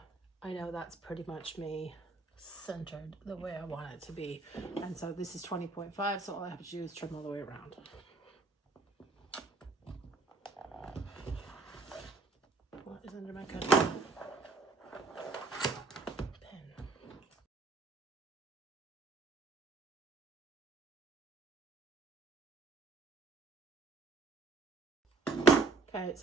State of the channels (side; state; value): left; quieter; 3.5 dB